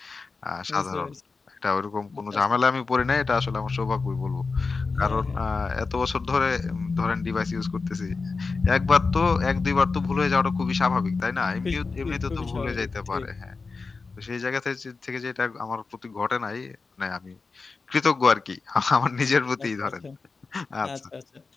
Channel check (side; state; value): right; quieter; 4.3 dB